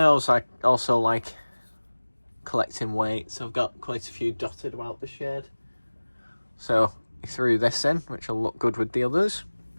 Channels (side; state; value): both; inverted; correlation -1.00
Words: I also like collecting weights. I've got quite a few dotted about the shed. So he threw this in, which will look good with the others.